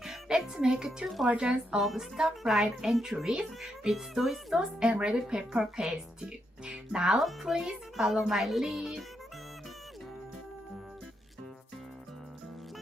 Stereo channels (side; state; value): both; normal; correlation 0.80